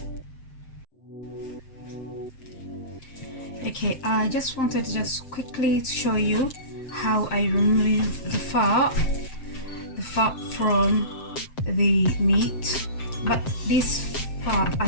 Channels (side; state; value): right; late; 7.6 ms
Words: Okay, I just wanted to just quickly show you how I remove the fat from the meat. But this fat,